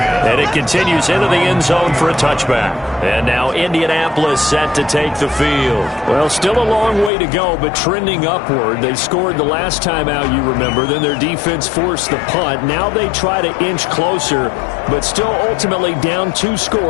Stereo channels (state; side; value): drops out; right; at 7.1 s